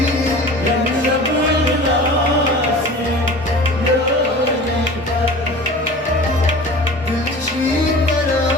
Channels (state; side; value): normal; both; correlation 0.39